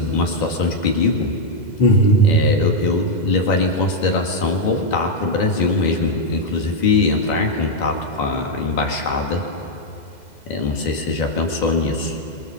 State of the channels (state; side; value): late; right; 2.0 ms